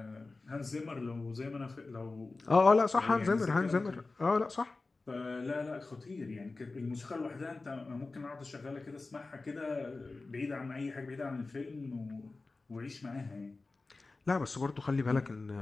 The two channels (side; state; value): right; quieter; 3.6 dB